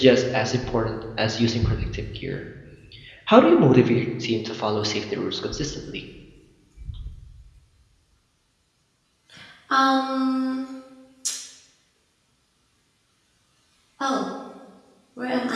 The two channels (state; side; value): identical; both; correlation 1.00